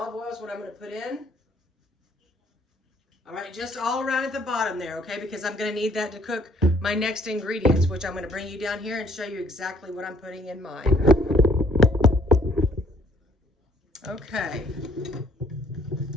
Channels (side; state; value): both; normal; correlation 0.62